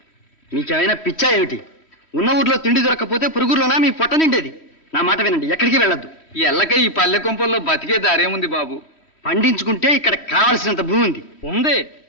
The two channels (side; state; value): right; late; 3.1 ms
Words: మీకేమైనా పిచ్చా ఏమిటి? ఉన్న ఊర్లో తిండి దొరకకపోతే పురుగులోనా మీ పొట్ట నిండేది. నా మాట వినండి, ఎక్కడికి వెళ్ళొద్దు. ఎల్లక ఈ పల్లె కొంపల్లో బతికే దారేముంది బాబు. పండించుకుంటే ఇక్కడ కావలసినంత భూమి ఉంది. ఉంది,